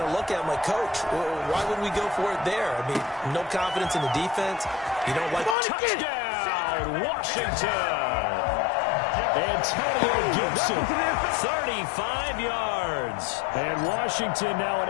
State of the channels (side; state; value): right; drops out; at 5.6 s